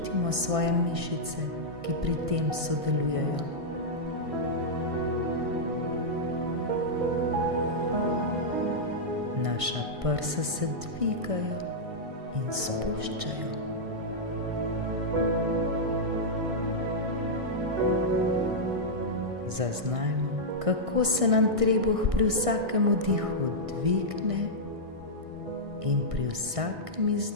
svoje mišice, ki pri tem sodelujejo. Naša prsa se dvigajo in spuščajo. Zaznajmo, kako se nam trebuh pri vsakem vdihu dvigne in pri vsakem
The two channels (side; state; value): left; late; 1.6 ms